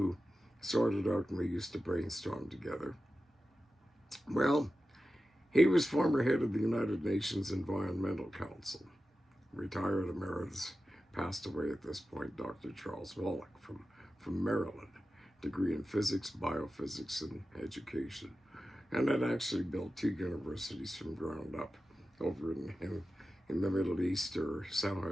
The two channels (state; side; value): normal; both; correlation 0.93